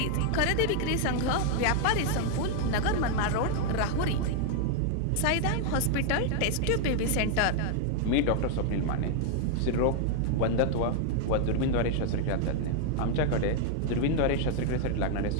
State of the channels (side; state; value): both; different; correlation 0.00